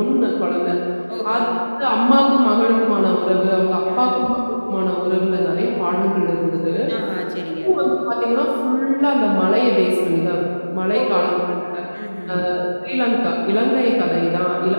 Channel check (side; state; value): both; inverted; correlation -1.00